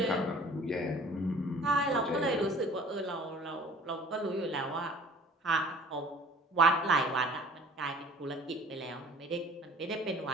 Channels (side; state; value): both; normal; correlation 0.50